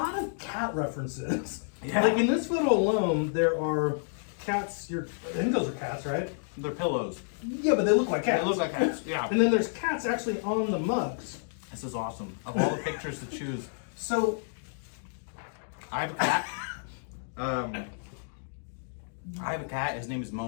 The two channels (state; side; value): silent; right; digital silence